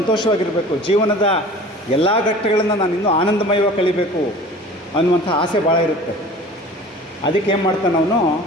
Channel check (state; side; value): normal; both; correlation 0.43